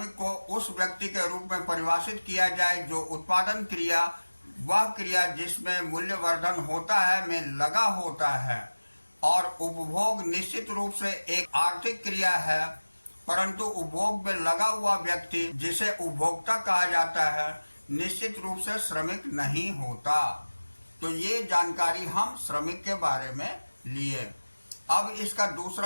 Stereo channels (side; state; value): both; inverted; correlation -1.00